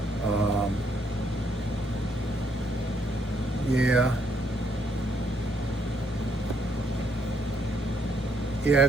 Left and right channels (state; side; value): normal; both; correlation 0.72